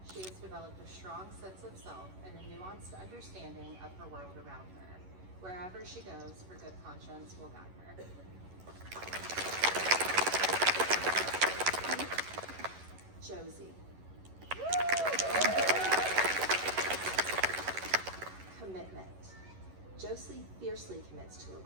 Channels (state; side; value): late; left; 11 ms